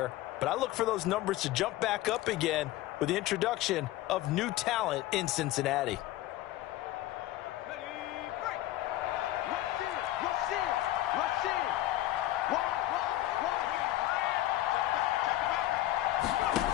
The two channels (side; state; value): right; quieter; 15.2 dB